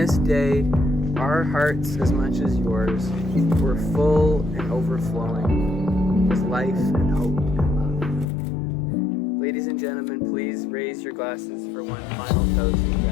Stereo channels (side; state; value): right; drops out; at 8.2 s